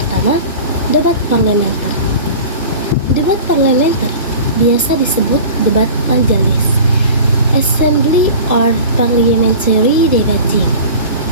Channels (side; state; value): both; inverted; correlation -0.38